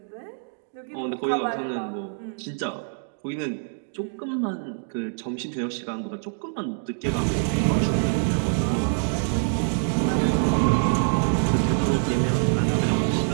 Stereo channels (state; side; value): silent; left; digital silence